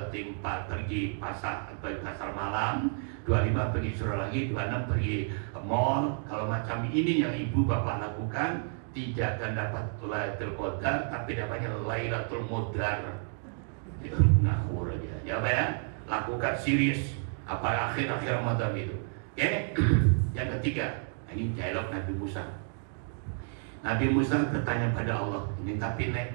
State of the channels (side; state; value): left; silent; 57 dB below the other